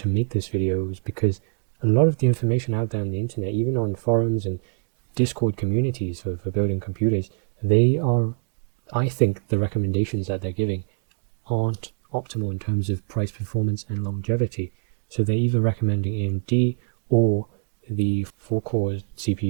make this video is because a lot of the information out there on the internet, even on forums and Discord communities for building computers, I think the recommendations that they're giving aren't optimal in terms of price, performance and longevity. So they're either recommending AMD or the 4-core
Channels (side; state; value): left; silent; 62 dB below the other